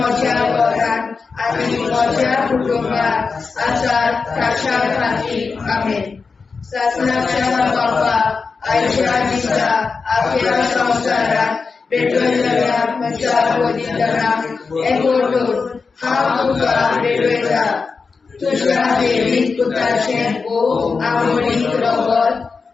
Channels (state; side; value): quieter; right; 4.8 dB